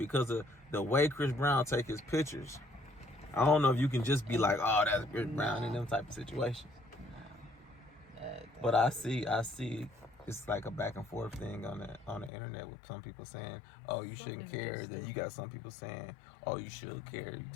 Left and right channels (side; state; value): right; drops out; at 12.3 s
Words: of the way Chris Brown take his pictures. I don't know if you can just be like, oh, that's Chris Brown in them type of situations. But I see it's like a back and forth thing on the internet with some people saying, oh, you shouldn't care. Then you got some people saying, oh, you should care. You